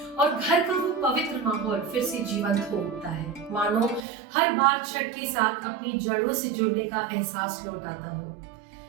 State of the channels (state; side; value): drops out; left; at 4.0 s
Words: और घर का वो पवित्र माहौल फिर से जीवंत हो उठता है, मानो हर बार छठ के साथ अपनी जड़ों से जुड़ने का एहसास लौट आता हो।